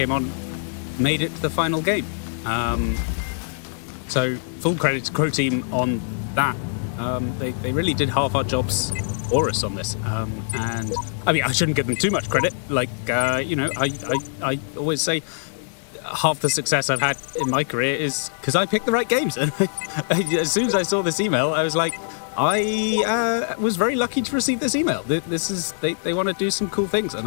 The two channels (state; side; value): silent; right; digital silence